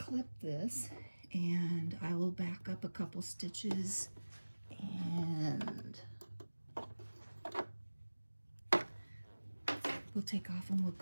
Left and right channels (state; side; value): inverted; both; correlation -1.00